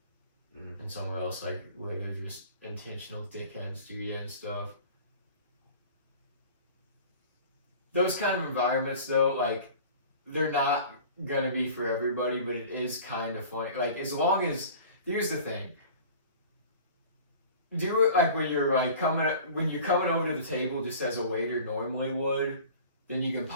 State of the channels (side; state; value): both; inverted; correlation -0.42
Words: and somewhere else, like where they're just intentional dickheads to you and stuff. Those kind of environments though, like they're not gonna be for everybody, but it is kind of funny. Like as long as, here's the thing. Do it like when you're coming over to the table just as a waiter normally would. Then you can